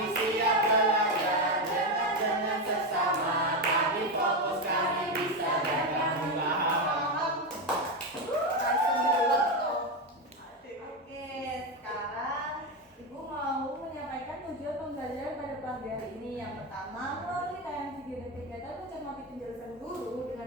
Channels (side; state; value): both; normal; correlation 0.11